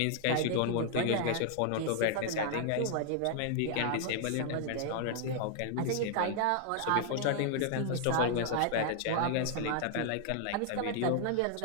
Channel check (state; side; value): different; both; correlation 0.00